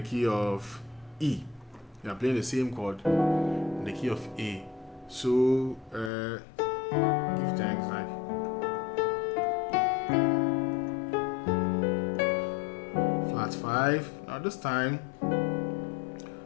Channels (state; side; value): drops out; right; at 6.1 s